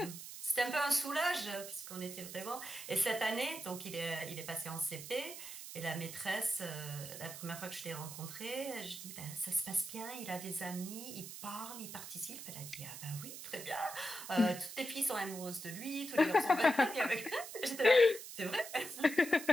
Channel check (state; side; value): noise; right; hiss, 10 dB below the sound